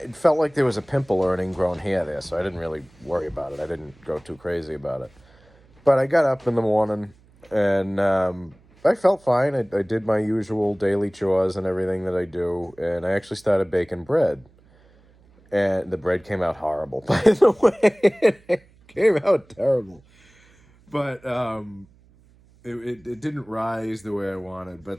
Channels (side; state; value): right; noise; hum, 29 dB below the sound